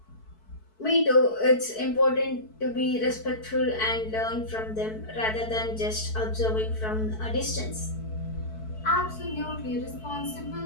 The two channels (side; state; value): right; late; 4.6 ms